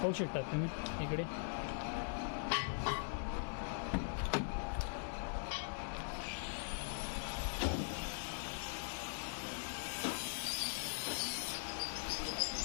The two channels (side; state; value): right; silent; digital silence